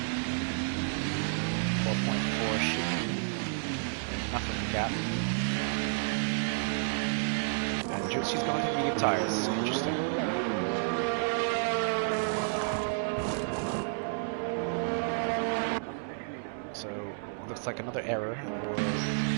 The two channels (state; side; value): silent; left; digital silence